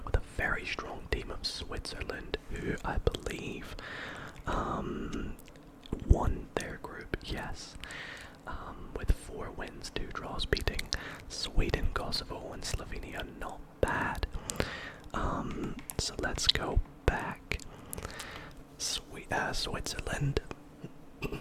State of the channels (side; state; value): both; identical; correlation 1.00